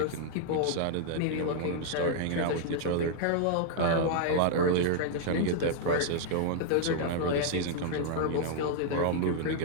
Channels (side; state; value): both; different; correlation -0.01